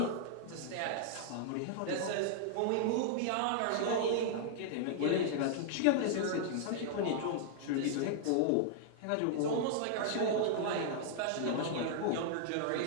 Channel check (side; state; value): both; different; correlation -0.01